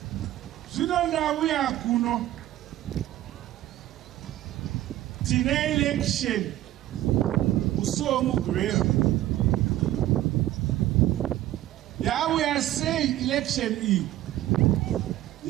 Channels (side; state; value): left; quieter; 14.3 dB